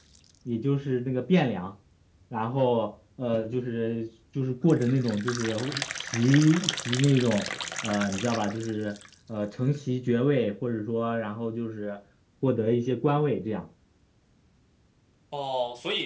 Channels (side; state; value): both; identical; correlation 1.00